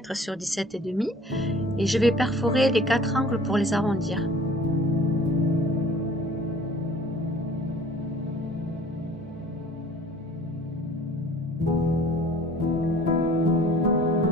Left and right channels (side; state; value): both; normal; correlation 0.49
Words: sur 17,5 et je vais perforer les 4 angles pour les arrondir.